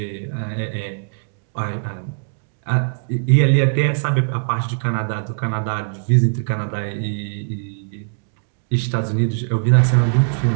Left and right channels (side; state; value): left; silent; digital silence